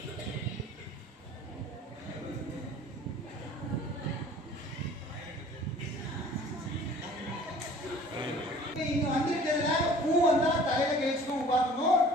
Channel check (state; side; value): normal; both; correlation 0.49